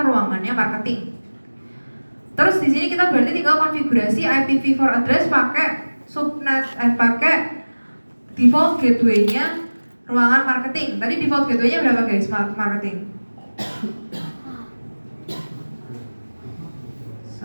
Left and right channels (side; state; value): both; inverted; correlation -1.00